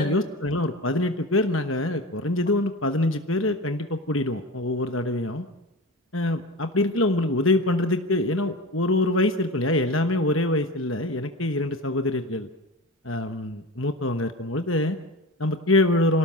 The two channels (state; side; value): normal; both; correlation 0.29